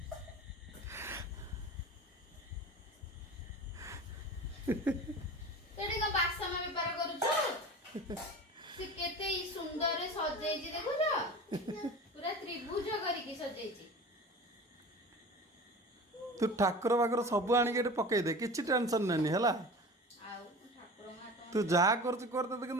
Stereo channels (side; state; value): both; normal; correlation 0.35